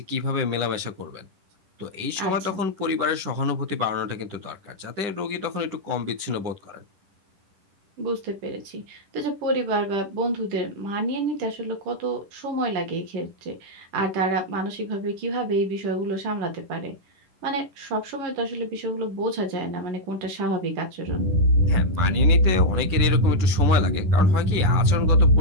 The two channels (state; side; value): late; left; 10 ms